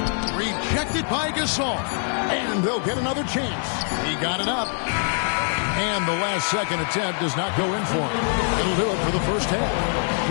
Rejected by Gasol. And they'll get another chance. He got it up. And the last second attempt does not go in for him. It'll do it for the first half.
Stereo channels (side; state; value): right; silent; 57 dB below the other